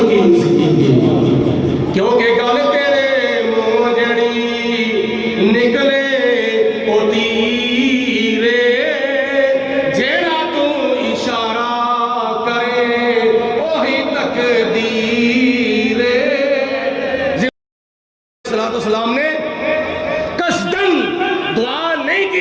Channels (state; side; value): identical; both; correlation 1.00